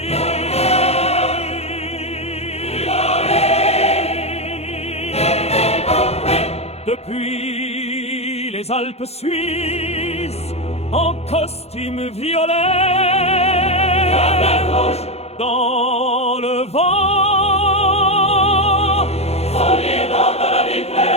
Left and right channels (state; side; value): late; right; 0.30 ms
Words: Depuis les Alpes suisses, en costume violet, dans le vent,